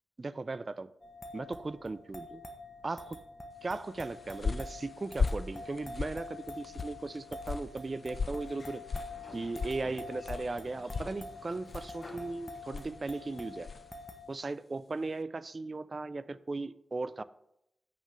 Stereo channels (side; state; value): both; normal; correlation 0.90